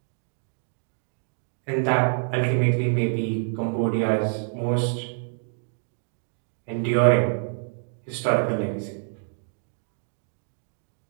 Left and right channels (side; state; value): left; silent; digital silence